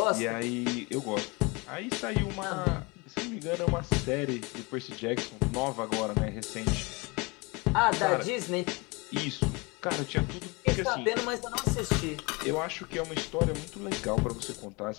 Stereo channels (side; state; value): right; quieter; 27.2 dB